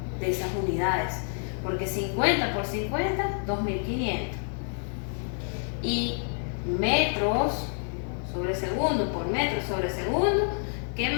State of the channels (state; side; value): silent; right; 55 dB below the other